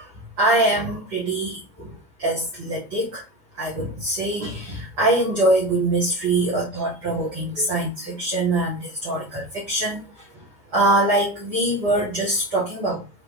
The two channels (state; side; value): late; left; 4.3 ms